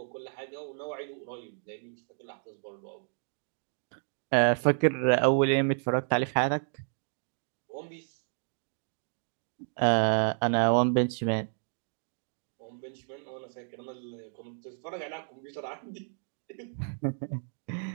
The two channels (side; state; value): left; silent; 57 dB below the other